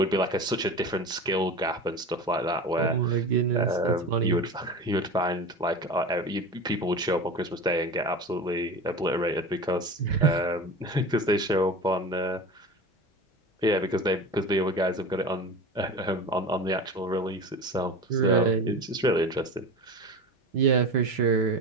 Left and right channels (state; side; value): normal; both; correlation 0.31